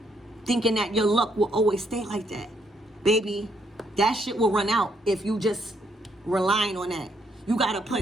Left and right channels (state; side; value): normal; both; correlation 0.73